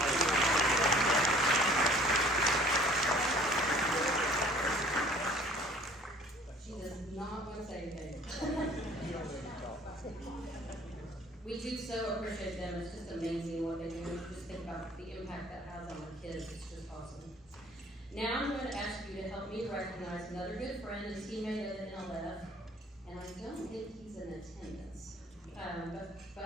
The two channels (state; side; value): normal; both; correlation 0.53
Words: She does not want to say anything. We do so appreciate them. It's just amazing what they do. Just think about the impact that has on the kids. It's just awesome. Now I'm going to ask you to help me recognize another good friend and teammate of the NLF, and I don't think he's in attendance.